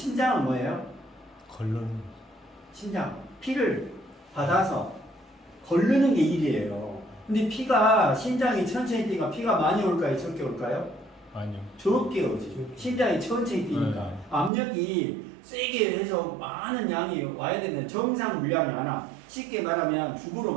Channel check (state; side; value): drops out; left; at 14.5 s